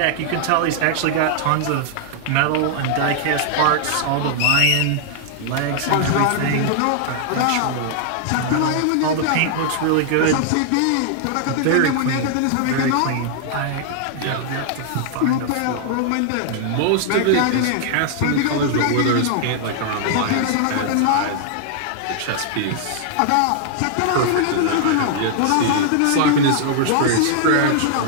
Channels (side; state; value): both; different; correlation 0.00